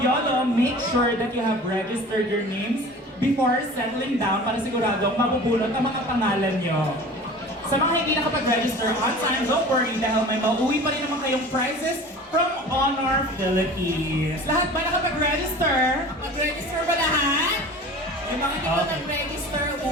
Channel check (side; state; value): both; normal; correlation 0.40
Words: make sure that you have registered your names before settling down para siguradong mabubulot ang mga pangalan nyo. Sa mga hindi nakapag-register on time, don't worry dahil may mauwi pa rin naman kayong prizes from Honor Philippines. Lahat ba nakapag-register? Mag-register ba lahat? Yung mga hindi pa Okay. nag-register,